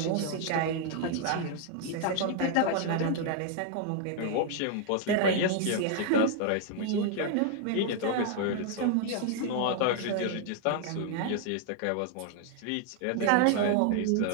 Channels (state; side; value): different; both; correlation 0.00